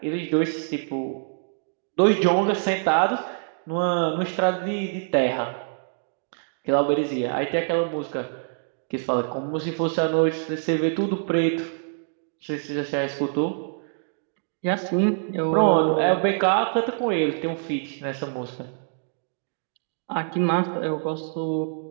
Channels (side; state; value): left; silent; digital silence